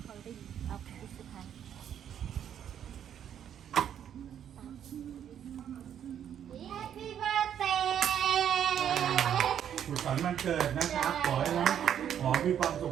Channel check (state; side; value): quieter; left; 9.5 dB